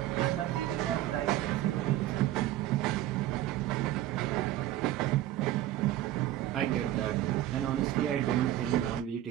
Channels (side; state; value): left; quieter; 13.7 dB